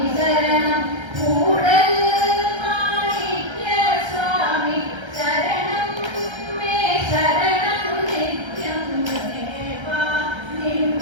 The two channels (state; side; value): late; left; 1.3 ms